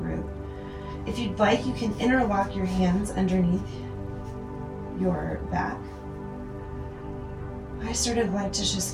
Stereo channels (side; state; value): both; identical; correlation 1.00